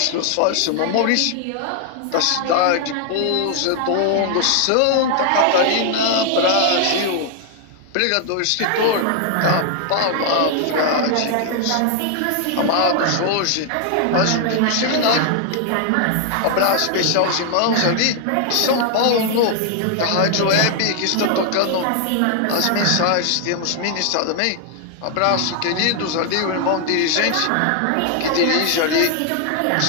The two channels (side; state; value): both; different; correlation 0.00